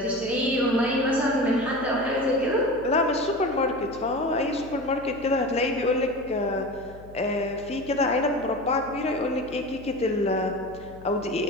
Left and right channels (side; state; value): left; noise; hum, 19 dB below the sound